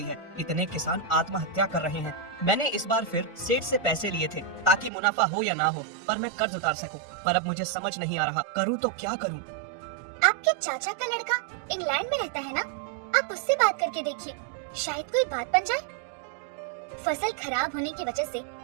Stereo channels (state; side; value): drops out; left; at 4.9 s